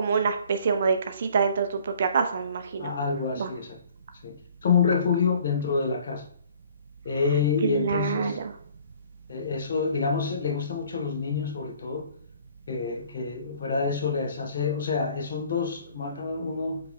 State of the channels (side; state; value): both; inverted; correlation -0.54